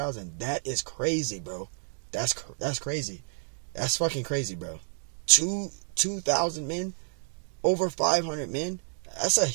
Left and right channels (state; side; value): silent; left; digital silence